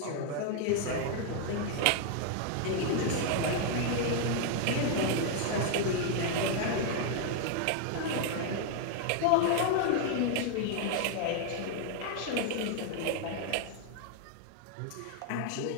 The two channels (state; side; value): different; both; correlation 0.00